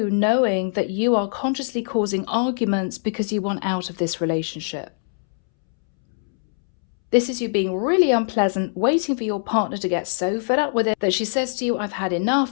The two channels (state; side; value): silent; right; 64 dB below the other